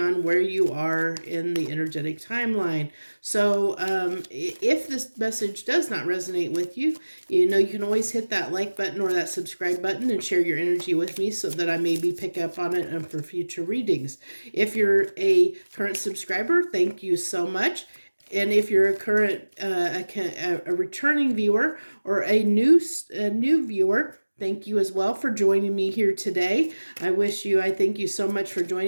where you are in the energetic timeline. So if this message does not resonate with you, you know you can always hit that like button or that subscribe button and share your energy with me so that I maybe pick up on it for future readings. If you're a current subscriber, thank you so much. And if you're a current a returning viewer or a new viewer, thank you as well for joining me here today. I thank you so much for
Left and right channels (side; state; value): both; inverted; correlation -1.00